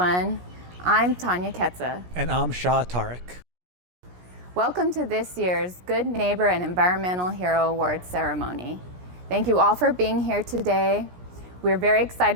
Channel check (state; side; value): late; left; 17 ms